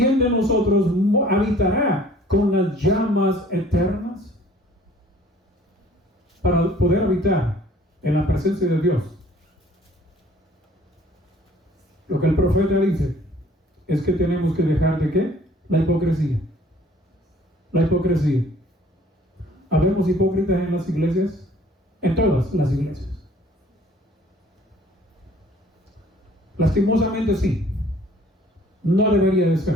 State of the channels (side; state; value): both; normal; correlation 0.55